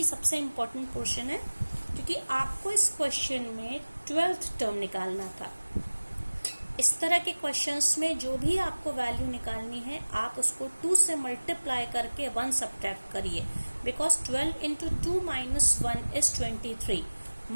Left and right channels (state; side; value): inverted; both; correlation -1.00